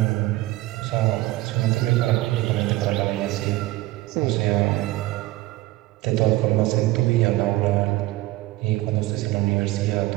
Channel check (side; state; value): left; quieter; 17.8 dB